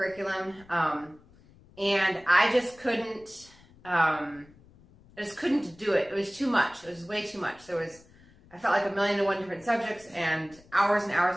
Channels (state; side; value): noise; left; rumble, 26 dB below the sound